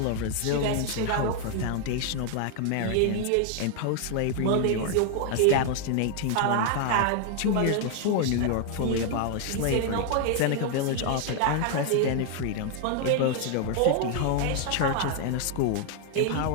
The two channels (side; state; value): both; different; correlation 0.00